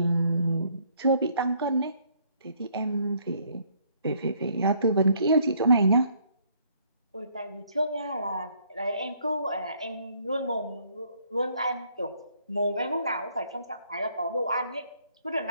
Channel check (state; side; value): inverted; both; correlation -0.66